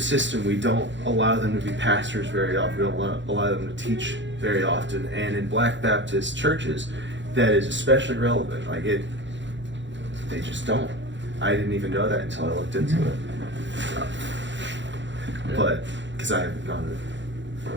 system. We don't allow them to be pastors very often. We don't allow them to teach very often. And in Black Baptist churches, that is especially relevant. Like they just don't. I didn't even know that until I looked into it. But because I haven't gone to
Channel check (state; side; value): late; left; 0.53 ms